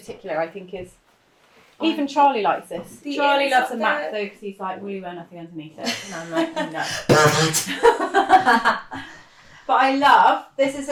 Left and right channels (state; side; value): identical; both; correlation 1.00